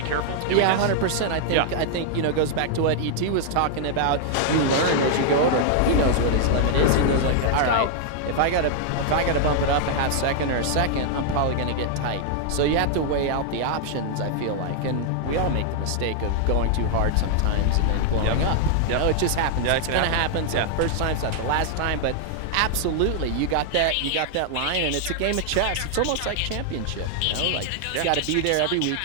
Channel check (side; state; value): both; different; correlation -0.01